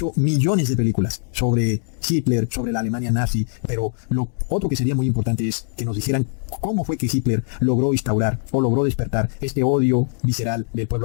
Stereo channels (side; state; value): right; silent; 61 dB below the other